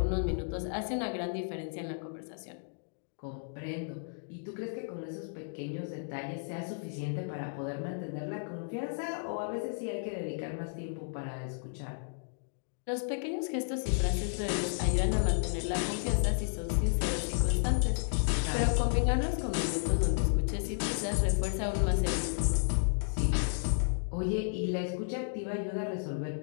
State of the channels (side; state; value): right; silent; digital silence